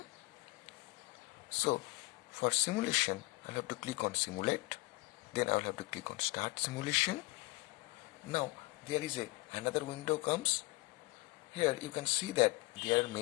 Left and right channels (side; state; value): right; quieter; 23.2 dB